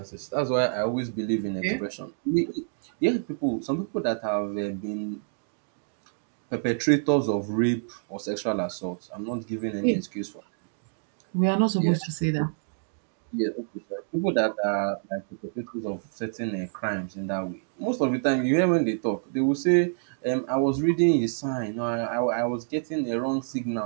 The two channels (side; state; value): left; silent; digital silence